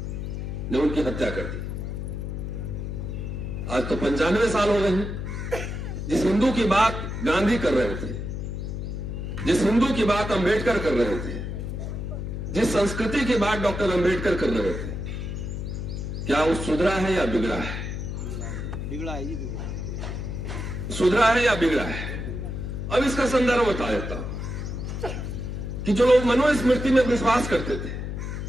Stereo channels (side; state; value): left; noise; hum, 5 dB below the sound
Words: ने उनकी हत्या कर दी। आज तो 95 साल हो गए हैं। जिस हिंदू की बात गांधी कर रहे थे, जिस हिंदू की बात अंबेडकर कर रहे थे, जिस संस्कृति की बात डॉक्टर अंबेडकर कर रहे थे, क्या वो सुधरा है या बिगड़ा है? बिगड़ा है जी, बिगड़ा है। सुधरा है या बिगड़ा है? अब इसका संदर्भ बता देता हूं कि जो लोग मनुस्मृति में विश्वास करते थे,